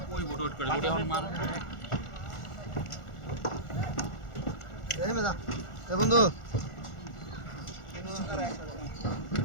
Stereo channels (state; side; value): late; right; 1.4 ms